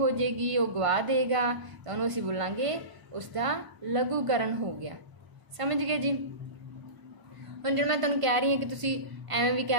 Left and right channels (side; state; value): left; late; 1.5 ms